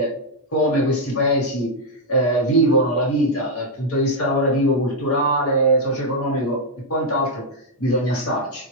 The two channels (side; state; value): both; normal; correlation -0.01